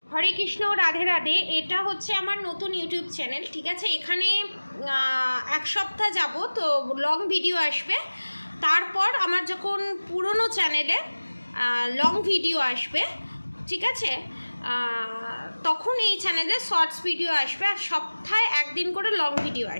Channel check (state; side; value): inverted; both; correlation -1.00